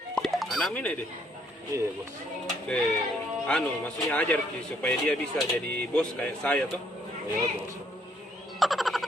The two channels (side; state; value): both; normal; correlation 0.68